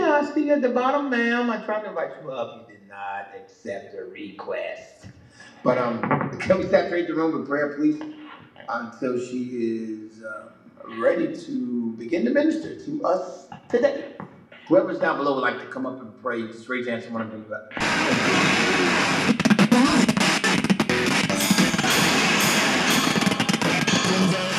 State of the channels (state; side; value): identical; both; correlation 1.00